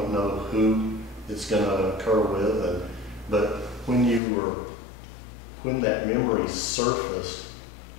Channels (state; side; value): drops out; right; at 4.2 s